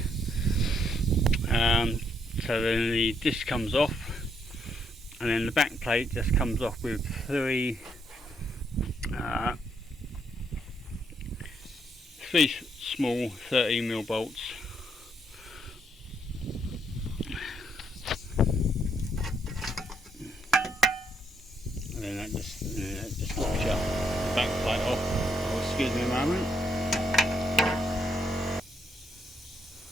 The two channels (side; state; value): both; normal; correlation 0.74